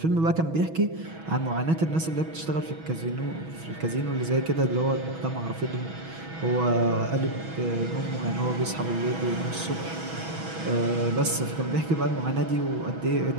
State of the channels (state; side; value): late; left; 6.2 ms